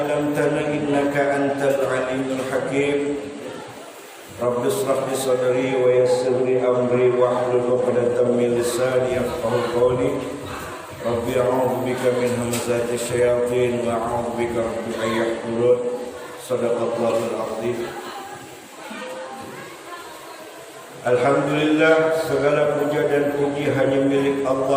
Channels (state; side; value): identical; both; correlation 1.00